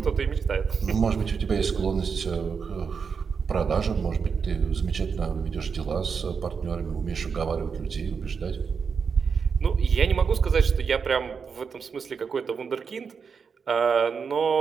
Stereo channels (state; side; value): quieter; left; 5.9 dB